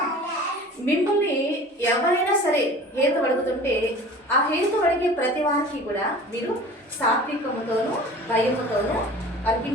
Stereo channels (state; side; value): normal; both; correlation 0.42